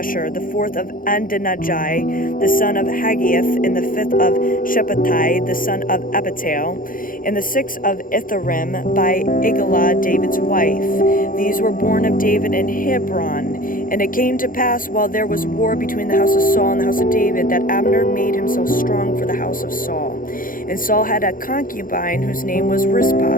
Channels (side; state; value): right; late; 0.40 ms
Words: the fourth of Adonijah, the son of Haggith, and the fifth of Shephatai, the son of Abital, and the sixth of Ithream by Eglah, David's wife. These were born of David in Hebron. And it came to pass, while there was war between the house of Saul and the house of David, that Abner made himself strong for the house of Saul. And Saul had a concubine whose name was Rizpah,